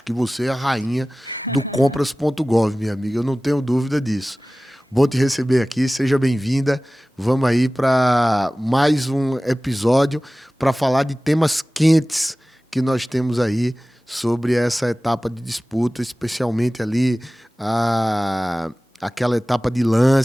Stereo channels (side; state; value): both; normal; correlation 0.97